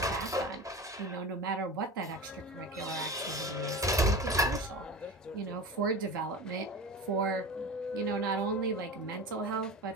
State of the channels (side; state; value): both; normal; correlation 0.30